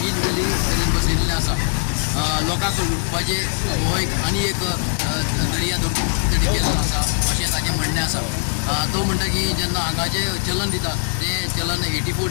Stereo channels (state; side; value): silent; right; digital silence